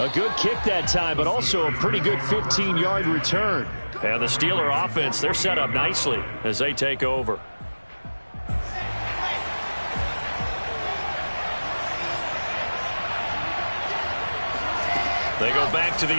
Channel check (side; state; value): both; inverted; correlation -1.00